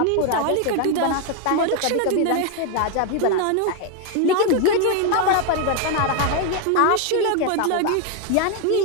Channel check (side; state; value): both; different; correlation 0.01